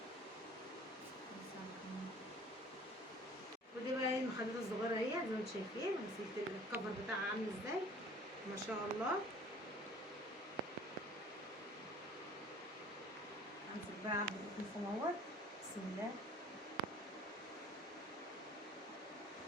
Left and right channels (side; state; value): both; normal; correlation 0.49